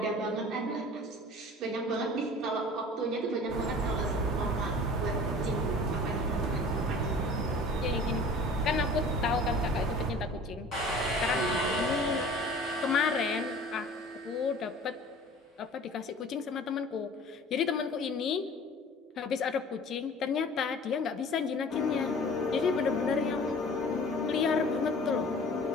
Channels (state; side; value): normal; both; correlation 0.45